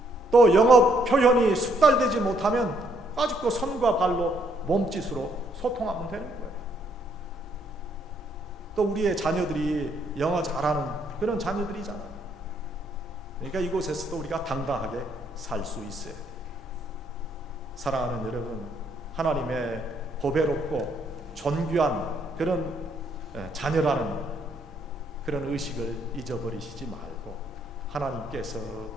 또 영어 표현이 숙달되지 못하면 아직도 손과 발로 몸짓으로 소통하면 되는 거예요. 또 우리의 자녀들이 영어 잘하는 그런 자녀들이잖아요. 그러니까 이곳에서도 우리가 당당하게 살 수 있어야 돼요. 사랑하는 여러분, 하나님의 보배롭고 존귀한 그런 자녀라는 그런 의식을 잊어버리시지 말고 하나님께서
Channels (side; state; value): both; normal; correlation 0.70